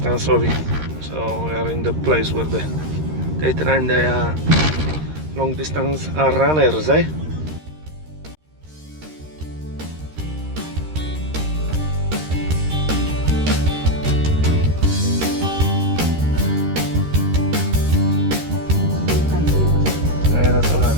So we are in the place where they train the long distance runners, eh? Yeah, that's all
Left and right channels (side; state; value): left; late; 13 ms